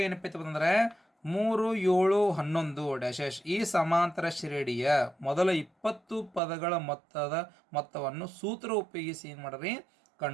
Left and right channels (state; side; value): drops out; left; at 6.4 s